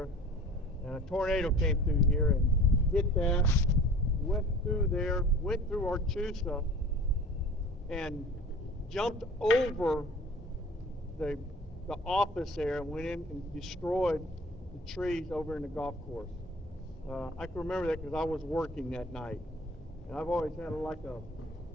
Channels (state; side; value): normal; both; correlation 0.44